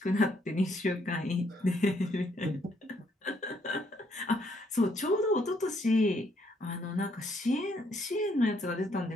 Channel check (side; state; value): both; normal; correlation 0.71